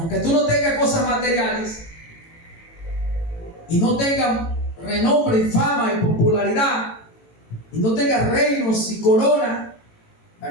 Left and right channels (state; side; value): late; right; 18 ms